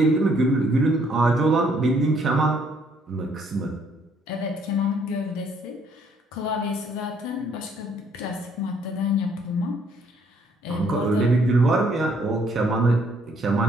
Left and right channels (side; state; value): both; normal; correlation 0.66